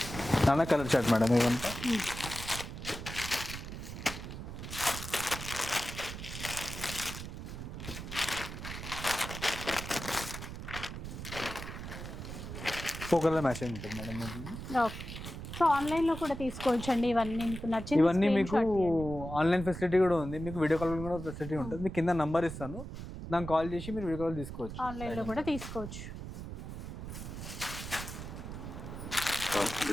నాన్న కలర్ చార్ట్ మేడం ఇవంతా. కలర్ మ్యాచింగ్ ఉంటుంది మేడం. సో ఆన్లైన్లో కూడా తీసుకోవచ్చు అండి ఇవన్నీ మీకు నచ్చింది. ఇవన్నీ మీకు ఆన్లైన్ ఫెసిలిటీ కూడా ఉంది, మీకు వీడియో కాల్ కూడా ఫెసిలిటీ ఉంటుంది. మీకు కింద నంబర్ ఇస్తాను, దానికి కాల్ చేసి మీరు వీడియో కాల్ తీసుకోవచ్చు. ఆన్లైన్లో కూడా తీసుకోవచ్చు.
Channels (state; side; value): noise; right; rumble, 8 dB below the sound